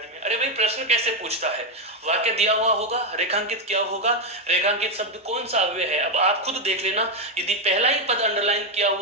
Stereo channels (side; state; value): both; normal; correlation 0.06